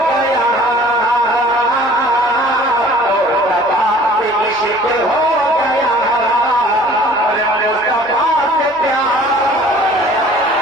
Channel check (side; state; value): left; noise; hum, 29 dB below the sound